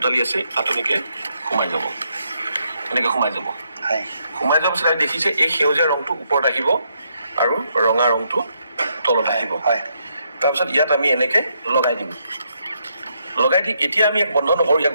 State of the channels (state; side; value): inverted; both; correlation -0.76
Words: আছে, তাত এনেকৈ সোমাই যাব, এনেকৈ সোমাই যাব। হয়। সোমাই যোৱাৰ পিছত দেখিছে এই সেউজীয়া ৰংটো ওপৰত আহিব আৰু ৰঙা ৰংটো তলত আহিব। হয়। তাৰপিছত ইয়াত আমি এনেকৈ লগাই দিম। লগাই দি এতিয়া আমি ইয়াক বন্ধ নকৰোঁ। ইয়াক